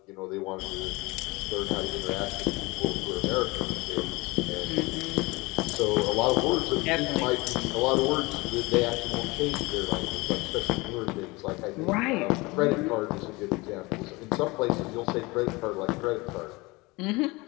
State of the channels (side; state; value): right; quieter; 23.9 dB